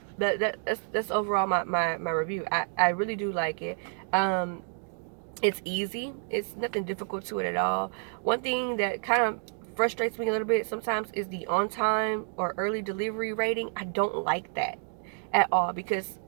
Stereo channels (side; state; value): left; silent; 58 dB below the other